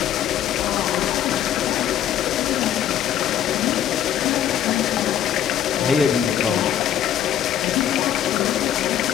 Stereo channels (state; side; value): quieter; right; 10.4 dB